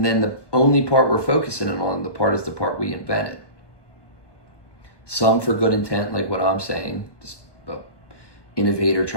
then the only part we're focusing on, is the part we invented. Some for good intent, like what I'm saying, just an innovator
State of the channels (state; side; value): late; right; 1.2 ms